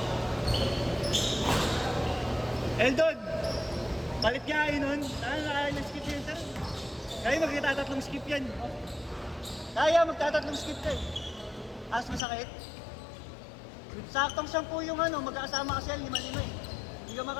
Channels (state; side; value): drops out; right; at 12.2 s